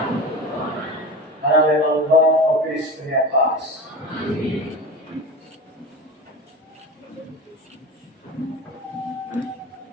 Karena memang Bapa Kristus punya pas. Amin.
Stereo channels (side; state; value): both; normal; correlation 0.29